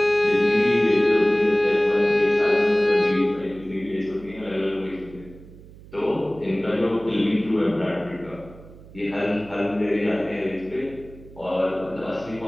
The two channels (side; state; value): right; noise; hum, 20 dB below the sound